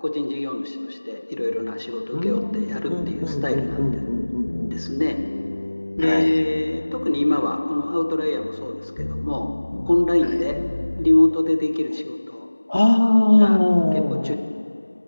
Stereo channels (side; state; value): both; inverted; correlation -1.00